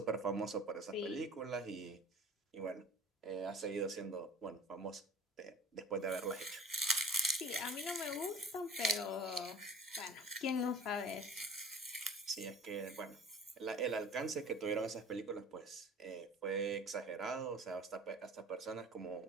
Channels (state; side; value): normal; both; correlation 0.44